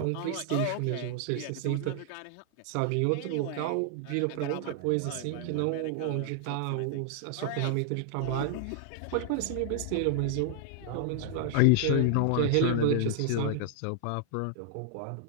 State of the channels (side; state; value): both; different; correlation 0.00